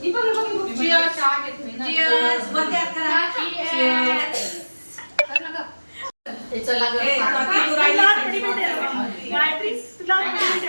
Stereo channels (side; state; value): both; inverted; correlation -1.00